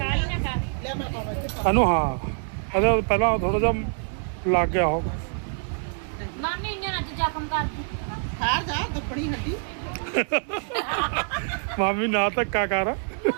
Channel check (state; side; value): silent; left; 61 dB below the other